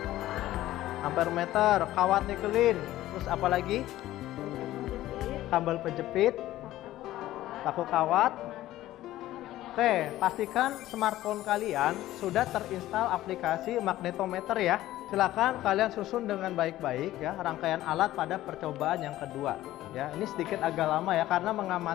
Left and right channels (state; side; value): quieter; right; 14.9 dB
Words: ampermeter, kawat nikelin, terus apa lagi? Kabel penjepit, paku kawat. Oke, pastikan smartphone kalian sudah terinstal aplikasi magnetometer ya. Silakan kalian susun dengan baik-baik ya rangkaian alat pada percobaan yang kedua. Ya, ini sedikit agak lama ya karena